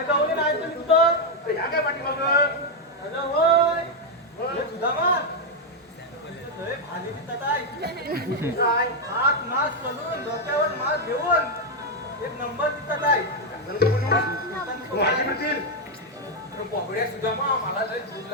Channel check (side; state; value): both; normal; correlation 0.02